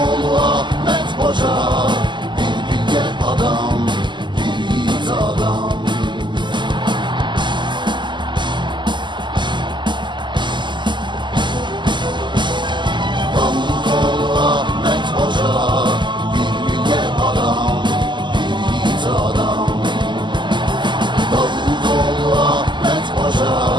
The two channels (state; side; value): late; left; 0.22 ms